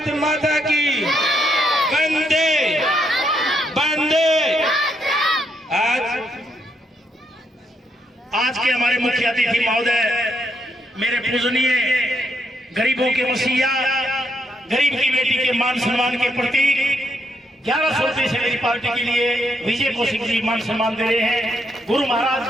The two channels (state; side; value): normal; both; correlation 0.77